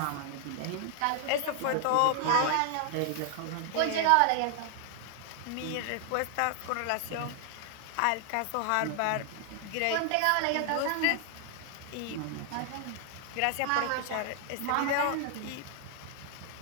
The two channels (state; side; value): different; both; correlation 0.00